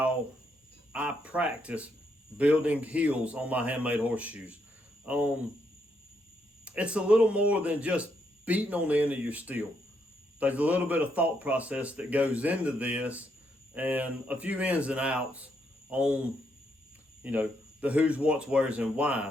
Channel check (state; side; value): normal; both; correlation 0.77